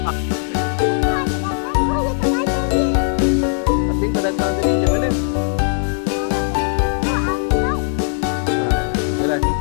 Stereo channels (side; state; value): right; silent; digital silence